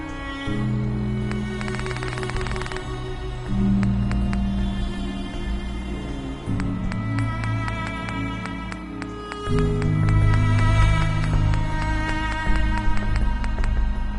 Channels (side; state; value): both; identical; correlation 1.00